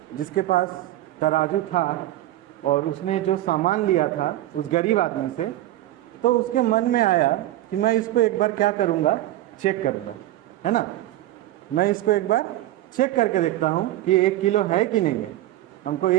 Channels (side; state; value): left; quieter; 14.9 dB